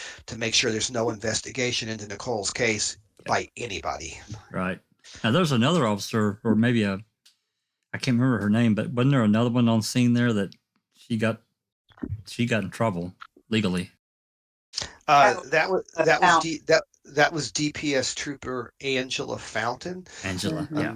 to make sure there's no investigation into Nicole's case by anybody. Right. Now there's another officer, or maybe I can't remember her name, but wasn't there another one on scene there that she got in trouble legally? That was DPS Trooper Angela Fountain. Angela, yeah.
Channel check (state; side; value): identical; both; correlation 1.00